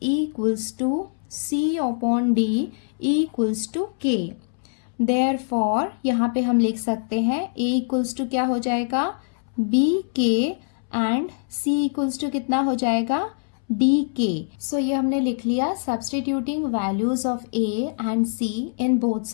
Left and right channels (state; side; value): silent; right; 63 dB below the other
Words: equals to C upon D equals to K। Therefore यहाँ पे हम लिख सकते हैं A इक्वल्स टू क्या हो जाएगा BK and C equals to कितना हो जाएगा DK। सो ये हमने लिख लिया substituting values of A and C in both